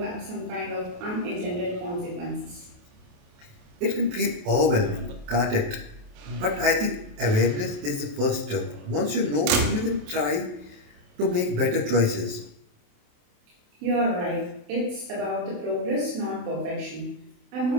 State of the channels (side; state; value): left; late; 28 ms